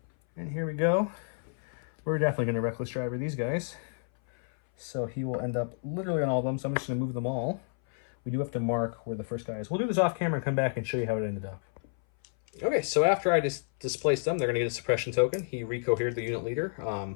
And here we go. We're definitely going to Reckless Driver these guys. So he will end up literally on all of them, so I'm just going to move them all. We do have to mark where the first guy is. We'll do this off camera and come back and show you how it ended up. Okay, so after I displaced them, they're going to get a suppression token. He recohered the unit leader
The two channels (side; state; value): right; silent; 58 dB below the other